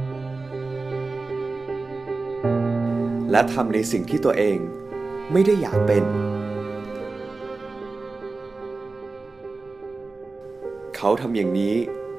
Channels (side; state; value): left; quieter; 3.7 dB